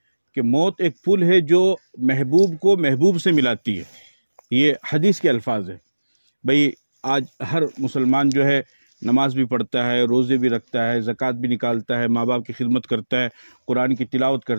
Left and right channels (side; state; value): both; inverted; correlation -1.00